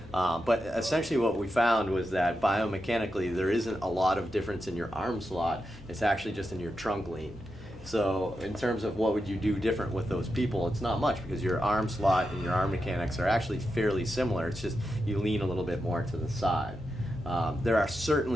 But essentially what we found was that biomechanically there isn't a lot of difference in your arm slot. It's actually just in your trunk lean. So in terms of what would you do different with those people, it's not much because your arm slot and your arm mechanics are actually fairly similar. It's just you lean a little bit more to the side. There are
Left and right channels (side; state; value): both; normal; correlation 0.87